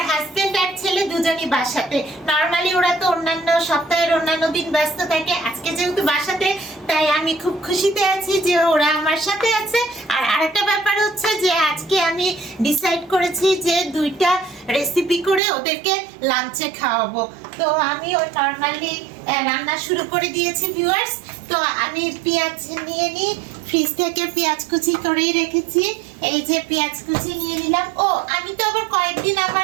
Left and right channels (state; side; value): drops out; left; at 15.4 s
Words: হাজবেন্ড আর ছেলে দুজনই বাসাতে। নর্মালি ওরা তো অন্যান্য সপ্তাহের অন্যান্য দিন ব্যস্ত থাকে, আজকে যেহেতু বাসাতে তাই আমি খুব খুশিতে আছি যে ওরা আমার সাথে আছে। আর আরেকটা ব্যাপার হচ্ছে যে আজকে আমি ডিসাইড করেছি যে দুইটা রেসিপি করে ওদেরকে লাঞ্চে খাওয়াবো। তো আমি ওই নর্মালি রান্না শুরু করে দিয়েছি ভিউয়ার্স। তো আমি পেঁয়াজ নিয়ে নিই, ফ্রিজ থেকে পেঁয়াজ কুচি করেই রেখেছি। এই যে পেঁয়াজ কুচি নিয়ে নিলাম। ও আমি তো আবার কয়েকদিন